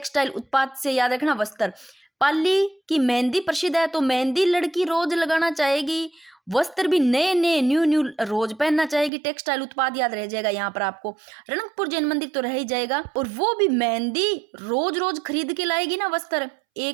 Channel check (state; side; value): drops out; left; at 9.1 s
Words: उत्पाद से याद रखना वस्त्र। पाली की मेहंदी प्रसिद्ध है तो मेहंदी लड़की रोज लगाना चाहेगी, वस्त्र भी नए नए न्यू न्यू रोज पहनना चाहेगी, टेक्सटाइल उत्पाद याद रह जाएगा यहाँ पर आपको, रणकपुर जैन मंदिर तो रह ही जाएगा। और वो भी मेहंदी रोज रोज खरीद के लाएगी ना वस्त्र,